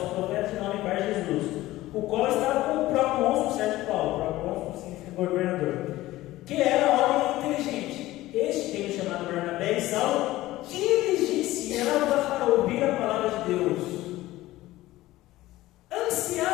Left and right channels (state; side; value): quieter; right; 16.8 dB